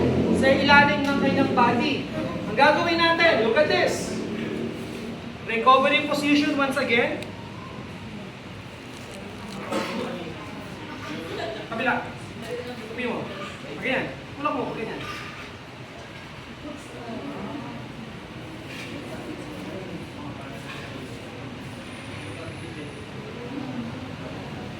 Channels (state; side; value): identical; both; correlation 1.00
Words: sa ilalim ng kanyang body. Ang gagawin natin, look at this. Recovery position once again. Kabila. Tupi mo. Ganyan. Tulak mo. Ganyan.